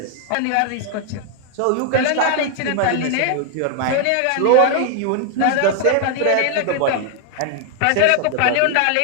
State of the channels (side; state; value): both; different; correlation 0.00